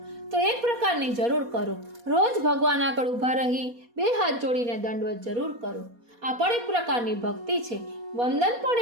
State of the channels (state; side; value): late; left; 4.2 ms